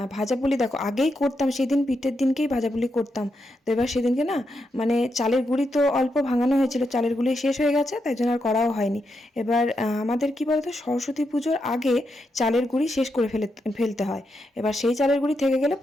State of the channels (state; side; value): normal; both; correlation 0.84